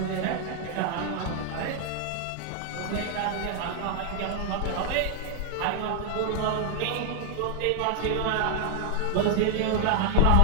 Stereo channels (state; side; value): different; both; correlation 0.00